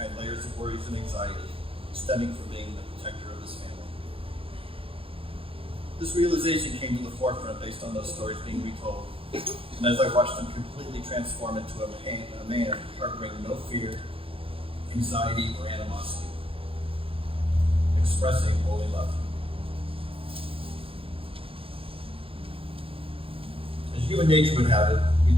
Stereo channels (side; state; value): left; late; 0.27 ms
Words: layers of worries and anxiety stemming from being the protector of his family. This realization came to the forefront based on those stories being retold, and as I watched him completely transform into a man harboring no fear, anxiety, or animosity, expressing holy love. As human nature would have it, we